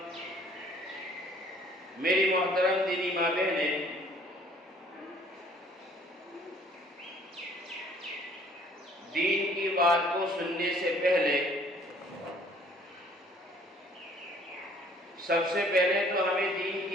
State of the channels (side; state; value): both; normal; correlation 0.57